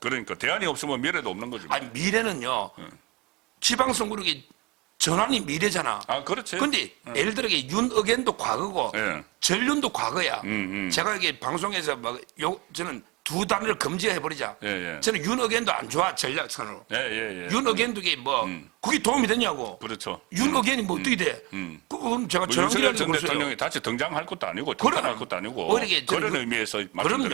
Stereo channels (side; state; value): left; quieter; 24.5 dB